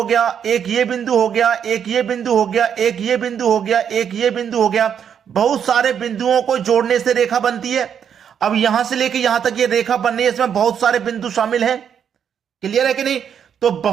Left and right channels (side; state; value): left; quieter; 8.2 dB